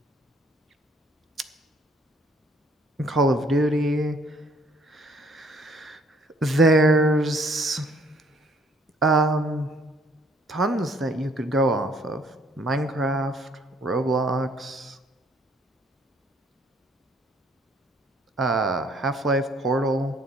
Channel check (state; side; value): normal; both; correlation 0.62